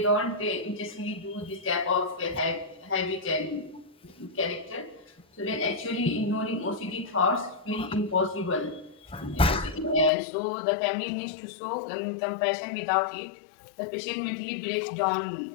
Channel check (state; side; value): drops out; right; at 10.1 s